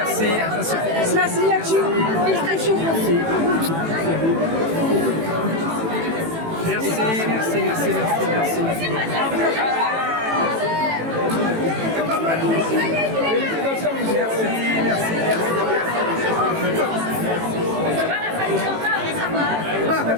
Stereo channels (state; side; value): late; left; 18 ms